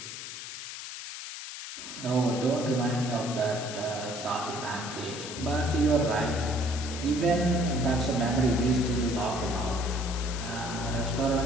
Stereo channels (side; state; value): left; noise; hiss, 9 dB below the sound